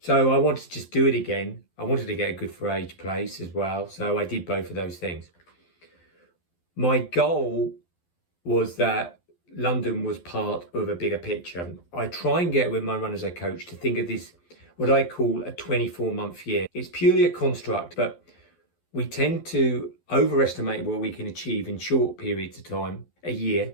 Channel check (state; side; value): late; right; 12 ms